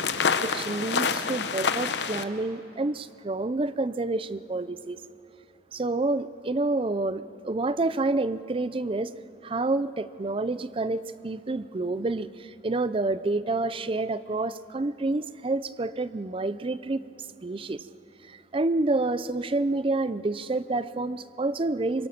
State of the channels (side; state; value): both; normal; correlation 0.46